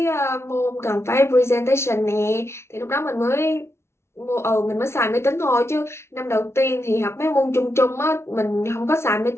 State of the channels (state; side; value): late; right; 0.13 ms